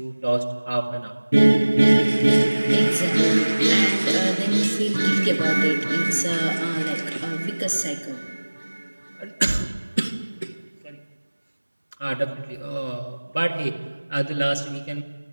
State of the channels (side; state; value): both; inverted; correlation -1.00